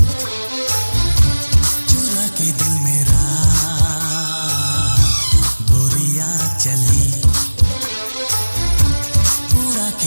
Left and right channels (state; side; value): inverted; both; correlation -1.00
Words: चुरा के दिल मेरा गोरिया चली, उड़ा